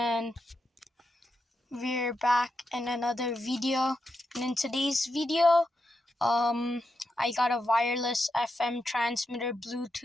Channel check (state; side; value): normal; both; correlation 0.85